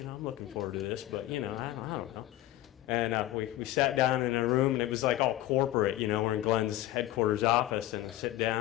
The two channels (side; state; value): right; quieter; 14.9 dB